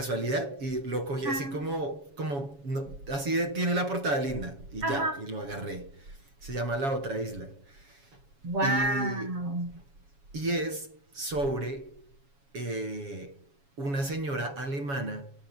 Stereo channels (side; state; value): left; late; 7.2 ms